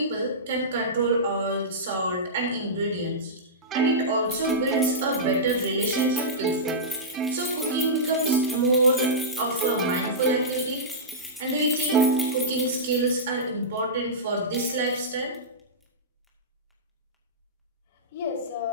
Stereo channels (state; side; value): normal; both; correlation -0.15